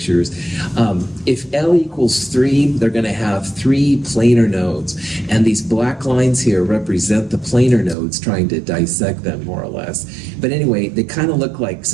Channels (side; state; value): left; drops out; at 8.0 s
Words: If L equals 3, they're going to have 3 planar nodes. And these black lines here represent the planar nodes, trying to dissect them more or less. But anyway, they kind of look like